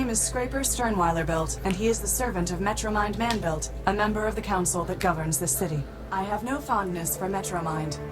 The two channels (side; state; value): both; identical; correlation 1.00